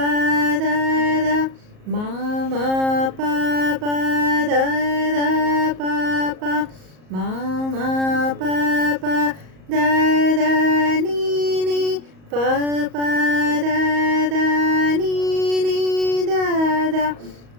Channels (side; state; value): left; late; 38 ms